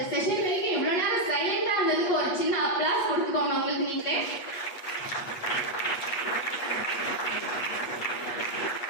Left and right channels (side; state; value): right; late; 8.3 ms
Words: செஷன் வரைக்கும் இவ்வளவு நேரம் சைலண்டா இருந்ததுக்கு ஒரு சின்ன அப்ளாஸ் கொடுத்துக்கோங்க உங்களுக்கு நீங்களே.